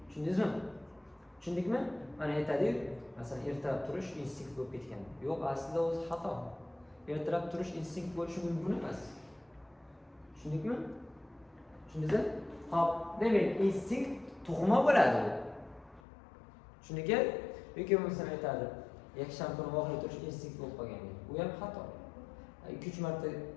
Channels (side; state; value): right; drops out; at 16.0 s